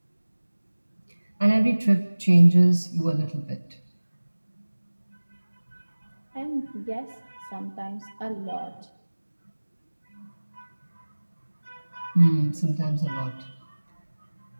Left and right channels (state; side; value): inverted; both; correlation -1.00